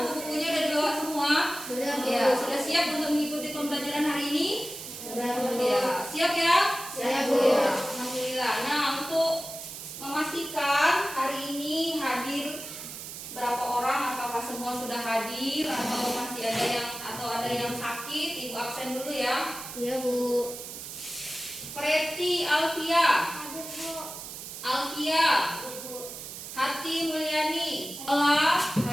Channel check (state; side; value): noise; right; hiss, 10 dB below the sound